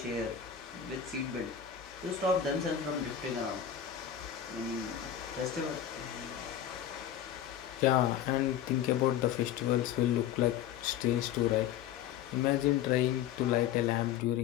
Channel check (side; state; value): right; quieter; 9.8 dB